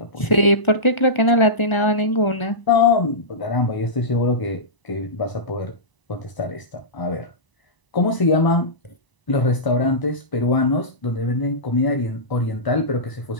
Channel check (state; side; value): late; right; 1.0 ms